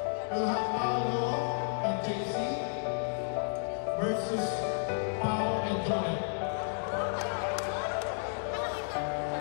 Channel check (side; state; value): right; silent; digital silence